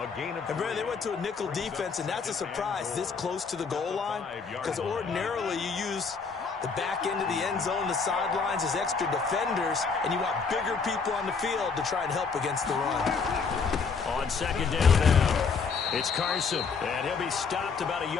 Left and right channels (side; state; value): right; quieter; 5.2 dB